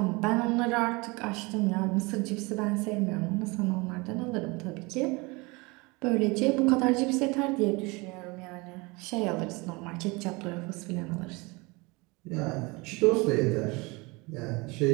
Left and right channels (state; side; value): quieter; left; 25.9 dB